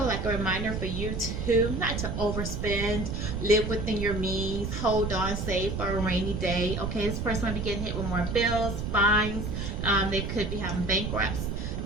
like a reminder for you to not to overspend, live within your means, hold on, save for a rainy day. Okay, this person might be getting hit with more bills, fines. They could be having bankrupts.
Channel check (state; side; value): noise; right; rumble, 3 dB below the sound